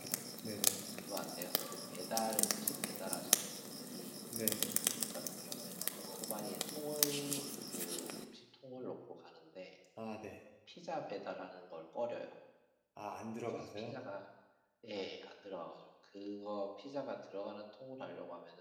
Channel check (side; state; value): both; identical; correlation 1.00